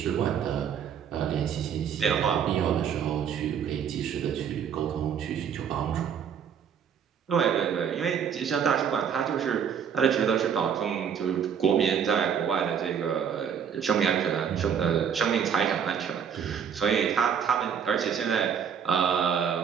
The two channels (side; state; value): left; quieter; 7.7 dB